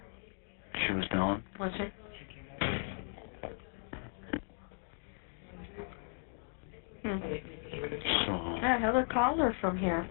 She was down. Was she? So... Yeah, Heather called her from here.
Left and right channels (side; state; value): right; silent; 53 dB below the other